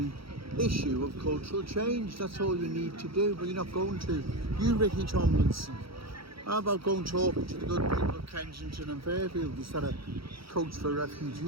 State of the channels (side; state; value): left; late; 0.75 ms